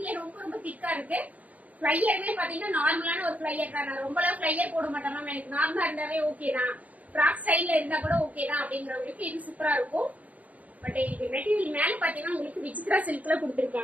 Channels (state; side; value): late; left; 0.073 ms